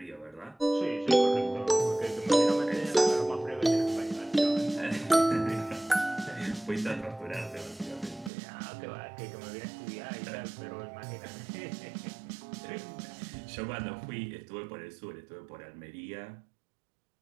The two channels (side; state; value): left; drops out; at 8.3 s